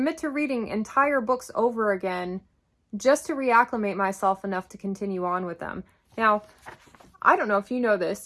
to reading entire books over again just to reacclimate myself enough to continue on with them. Now, I don't know if you know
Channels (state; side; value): identical; both; correlation 1.00